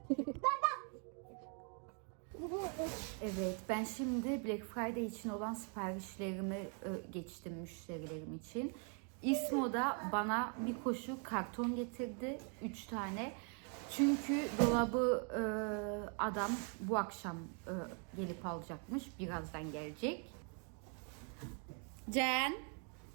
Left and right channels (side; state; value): left; quieter; 39.9 dB